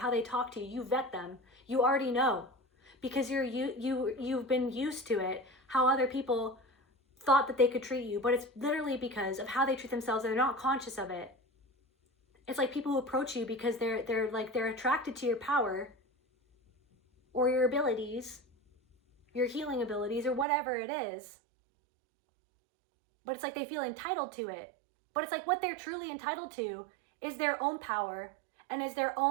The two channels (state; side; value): drops out; left; at 20.5 s